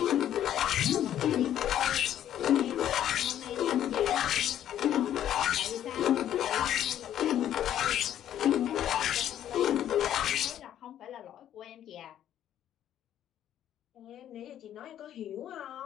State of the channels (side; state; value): right; quieter; 11.0 dB